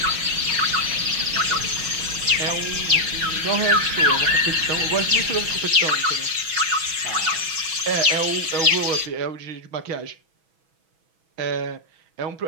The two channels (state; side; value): late; left; 6.2 ms